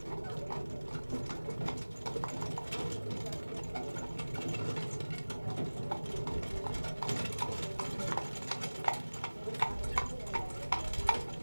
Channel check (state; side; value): inverted; both; correlation -1.00